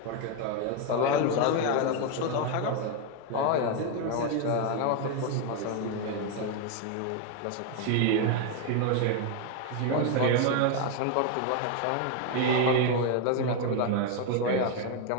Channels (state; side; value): different; both; correlation 0.01